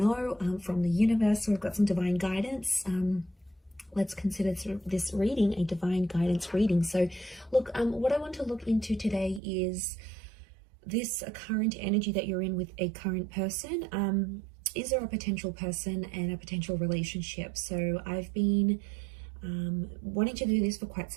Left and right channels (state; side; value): drops out; left; at 9.4 s